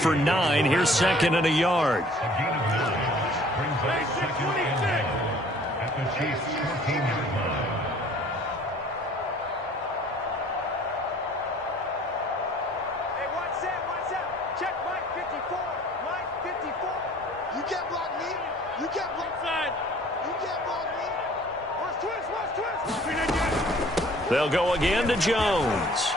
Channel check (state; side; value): normal; both; correlation 0.53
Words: 9. Here's second and a yard. They'll go again to Jones.